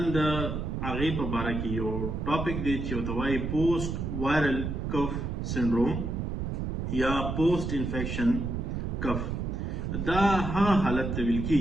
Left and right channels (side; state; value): right; noise; rumble, 3 dB below the sound